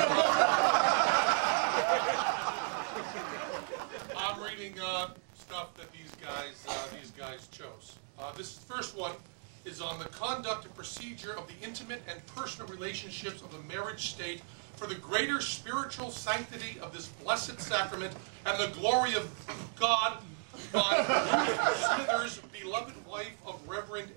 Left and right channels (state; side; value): silent; left; 54 dB below the other